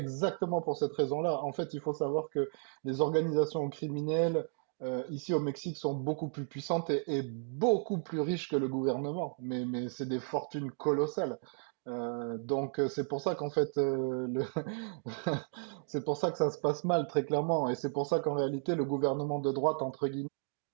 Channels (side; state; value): left; silent; 55 dB below the other